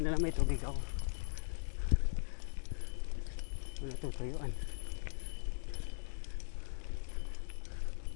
na lang may tubig ako. Wala tutuyuan.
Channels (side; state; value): right; silent; 51 dB below the other